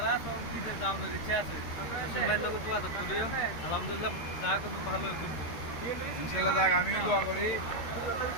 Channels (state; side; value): late; right; 13 ms